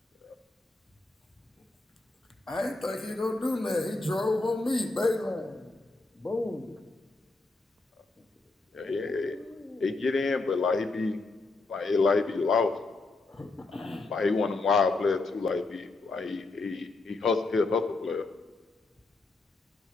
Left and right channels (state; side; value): quieter; right; 3.4 dB